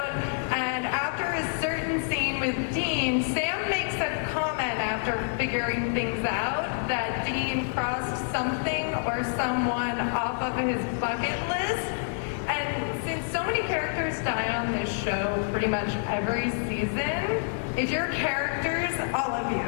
And after a certain scene with Dean, Sam makes a comment after figuring things out that Dean crossed something or someone off of his bucket list. And since so many characters die on this show pretty much every season, if your characters, all of you,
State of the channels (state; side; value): silent; right; 60 dB below the other